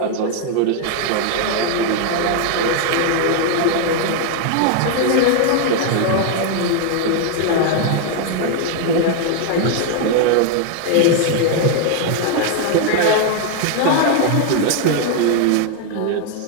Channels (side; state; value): both; different; correlation 0.00